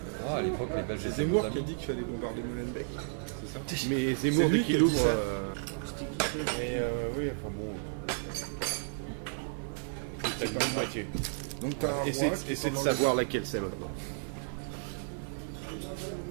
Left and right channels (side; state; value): left; silent; digital silence